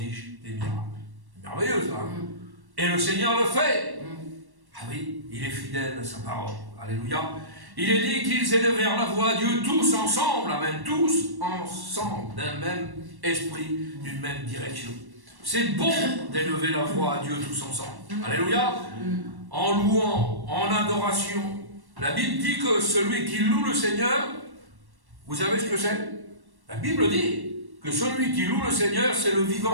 des miracles. Merveilleux ça. Et le Seigneur le fait. Ah oui, il est fidèle à sa parole. Alléluia. Il est dit qu'ils élevèrent la voix à Dieu tous ensemble, amen, tous ensemble, d'un même esprit, d'une même direction. C'est bon d'élever la voix à Dieu tous ensemble. Alléluia. En louant, en adoration. La Bible dit que celui qui loue le Seigneur, vous savez ce que c'est? La Bible dit que celui qui loue le Seigneur, c'est le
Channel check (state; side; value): late; left; 1.1 ms